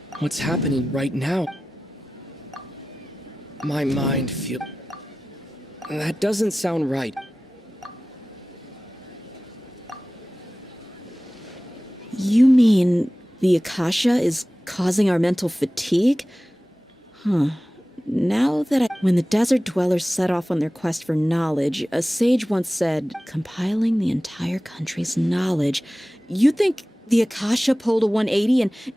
What's happening right now? My mind feels... That doesn't sound right. You mean the Akasha is causing our mental fatigue? Now that When the desert dwellers set off on their quest for knowledge, a sage once said, compiling the entire country's knowledge. You think the Akasha pulled a 180 and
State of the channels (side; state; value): both; normal; correlation 0.96